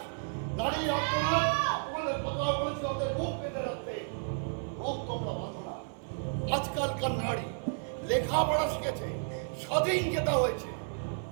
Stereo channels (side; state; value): left; silent; 56 dB below the other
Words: নারী আর্তনাদ। তোমাদের কতবার বলেছি ওদের মুখ পেতে রাখতে, মুখ তোমরা বাঁধো না। আজকালকার নারী লেখাপড়া শিখেছে, স্বাধীন যেটা হয়েছে,